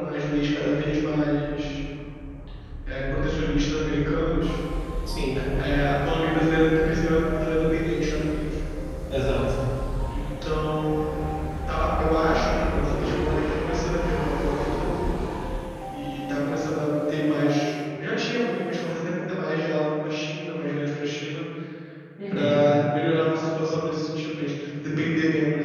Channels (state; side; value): identical; both; correlation 1.00